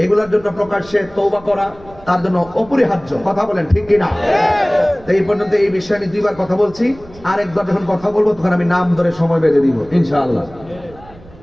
এগুলোর জন্য প্রকাশ্যে তওবা করা তার জন্য অপরিহার্য। কথা বলেন ঠিক কিনা? এই পর্যন্ত এই বিষয়ে আমি দুইবার কথা বলছি, আরেকবার যখন কথা বলবো তখন আমি নাম ধরে সময় বেঁধে দিব ইনশাআল্লাহ।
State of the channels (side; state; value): right; noise; rumble, 22 dB below the sound